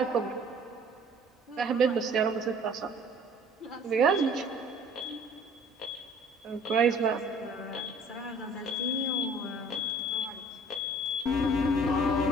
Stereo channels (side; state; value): both; normal; correlation 0.52